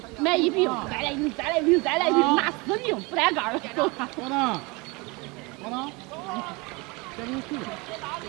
买一瓶，再来一瓶，再来一瓶，再来一瓶，拿4瓶不带盖儿的，走吧。我呢？我呢？这里去。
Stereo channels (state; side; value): quieter; left; 26.8 dB